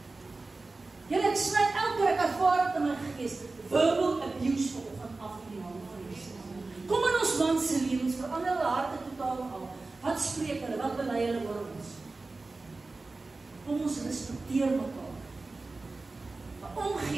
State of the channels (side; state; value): left; quieter; 3.5 dB